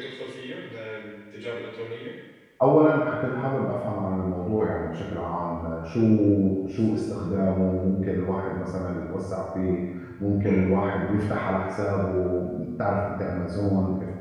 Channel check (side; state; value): both; identical; correlation 1.00